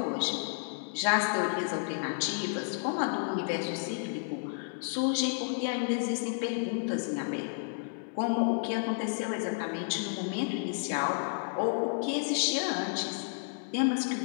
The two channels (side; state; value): right; silent; digital silence